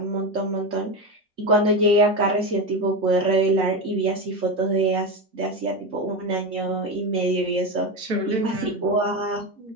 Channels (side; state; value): both; normal; correlation 0.17